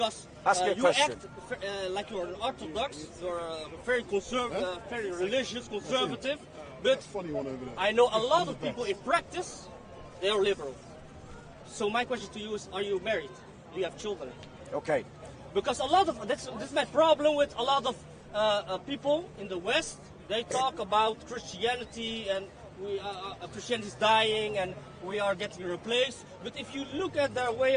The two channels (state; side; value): identical; both; correlation 1.00